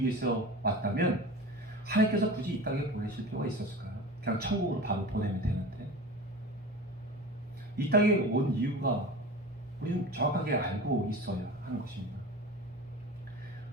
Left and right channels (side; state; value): both; normal; correlation 0.33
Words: 위해서 왔다면 하나님께서 굳이 이 땅에 보내실 필요가 있었을까요? 그냥 천국으로 바로 보내면 되는데. 이 땅에 온 이유가 우리는 정확하게 알고 있어야 하는 것입니다.